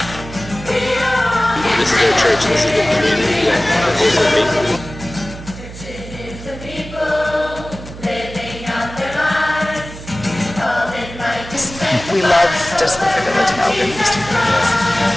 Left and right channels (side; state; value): right; noise; hum, 13 dB below the sound